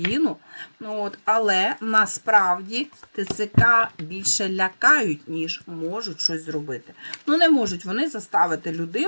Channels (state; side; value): inverted; both; correlation -1.00